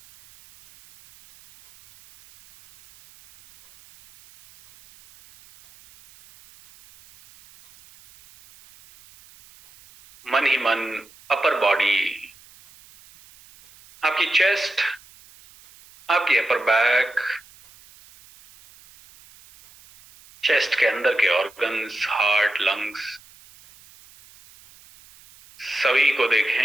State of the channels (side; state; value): right; noise; hiss, 25 dB below the sound